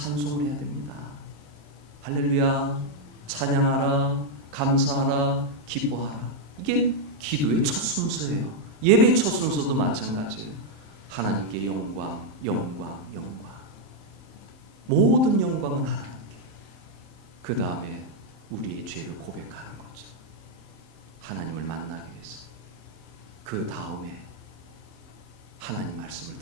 해야 됩니다. 할렐루야, 찬양하라, 감사하라, 기뻐하라. 이게 기도의 첫 순서예요. 예배의 첫 순서도 마찬가지예요. 하나님께 영광, 영광, 영광. 모든 영광은 하나님께. 그 다음에 우리의 죄를 고백하는 거죠. 하나님을 만나기 위해서. 그 다음에 하나님 말씀을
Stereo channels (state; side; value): late; right; 27 ms